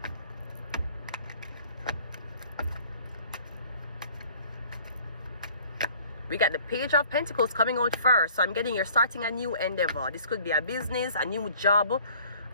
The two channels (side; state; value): both; inverted; correlation -0.53